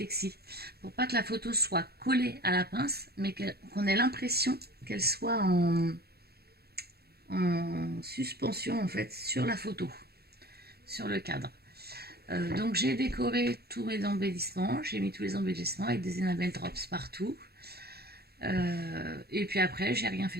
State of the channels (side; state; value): left; late; 0.46 ms